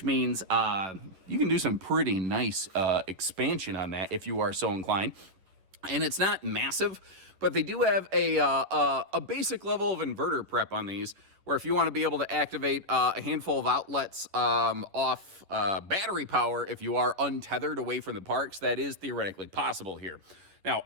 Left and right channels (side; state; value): left; late; 10 ms